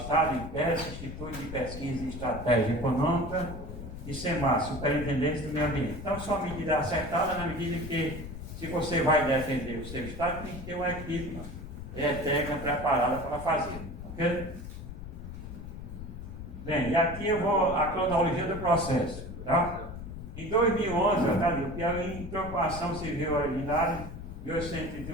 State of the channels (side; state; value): left; noise; rumble, 10 dB below the sound